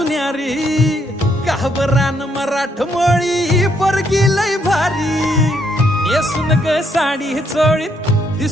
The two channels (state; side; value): normal; both; correlation 0.73